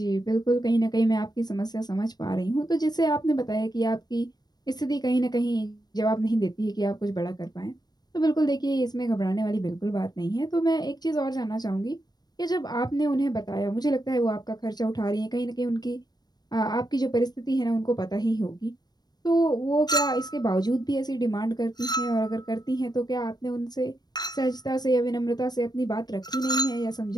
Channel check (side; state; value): right; late; 0.19 ms